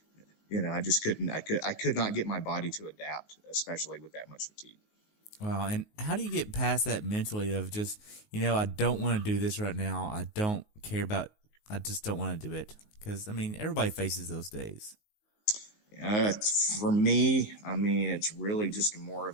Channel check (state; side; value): late; right; 19 ms